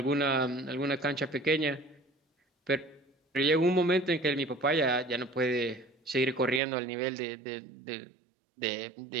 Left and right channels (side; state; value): left; drops out; at 6.6 s